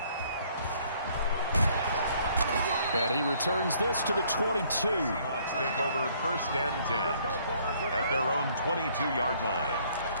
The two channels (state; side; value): inverted; both; correlation -0.63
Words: And he returns this to the 22. Seahawks take over 1st and 10 at their own 22-yard line.